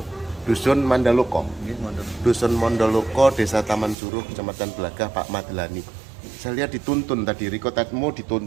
dusun Mandaloko, Desa Taman Suruh, Kecamatan Belagah, Pak Madlani. Saya lihat dituntun tadi, Riko Tatmo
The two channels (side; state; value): left; drops out; at 4.0 s